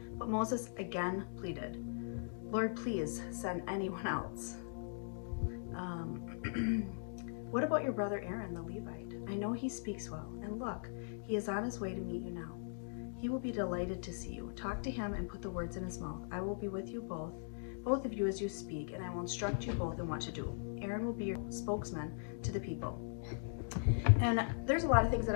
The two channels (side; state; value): right; silent; digital silence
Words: But Moses again pleaded, 'Lord, please send anyone else.' What about your brother Aaron, the Levite? I know he speaks well, and look, he is on his way to meet you now. He will be delighted to see you. Talk to him and put the words in his mouth. I will be with you both of you as you speak, and I will instruct you both in what to do. Aaron will be your spokesman to the people." And there's a lot of things that